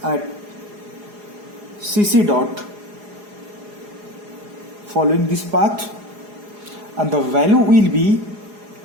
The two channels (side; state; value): left; late; 4.8 ms